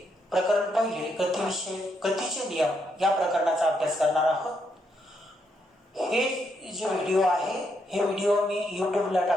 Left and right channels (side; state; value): both; normal; correlation 0.78